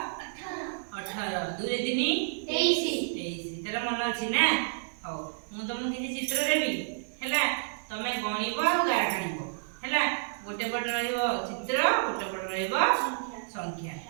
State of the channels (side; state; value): left; silent; digital silence